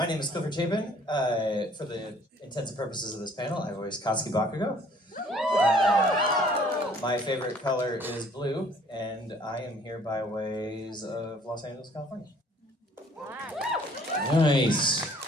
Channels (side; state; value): both; normal; correlation 0.57